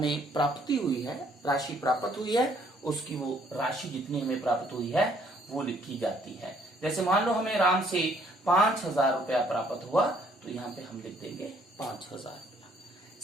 प्राप्ति हुई है, राशि प्राप्त हुई है, उसकी वो राशि जितनी हमें प्राप्त हुई है वो लिखी जाती है। जैसे मान लो हमें राम से 5,000 रुपया प्राप्त हुआ तो यहाँ पे हम लिख देंगे 5,000 रुपया।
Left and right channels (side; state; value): both; normal; correlation 0.65